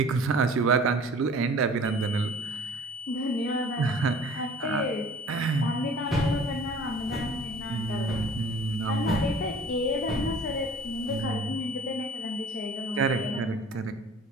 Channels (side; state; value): both; normal; correlation 0.48